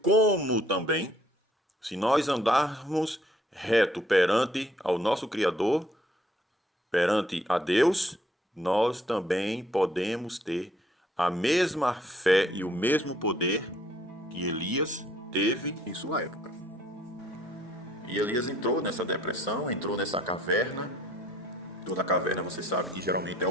como também, se nós andarmos reto perante ao nosso Criador, perante a Deus, nós também podemos ter a mesma fé e o mesmo poder que Elias teve em sua época. E Elias entrou nessa depressão, entrou nessa caverna. Toda caverna, você sabe que geralmente é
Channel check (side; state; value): both; normal; correlation 0.63